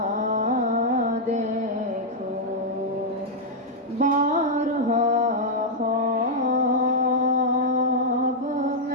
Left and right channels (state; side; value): normal; both; correlation -0.04